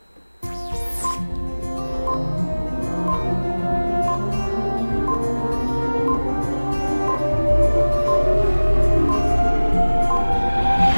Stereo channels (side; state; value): both; inverted; correlation -1.00